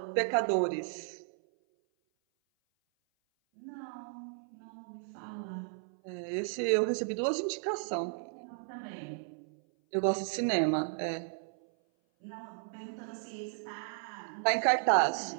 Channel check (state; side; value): silent; left; 55 dB below the other